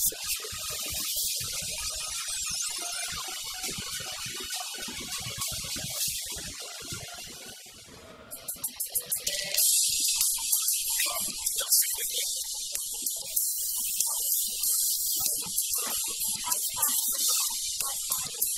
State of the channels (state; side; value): identical; both; correlation 1.00